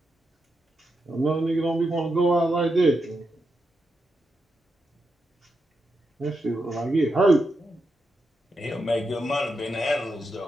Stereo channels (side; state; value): both; normal; correlation 0.85